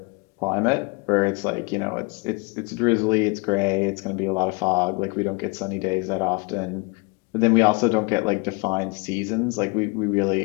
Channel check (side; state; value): right; quieter; 30.1 dB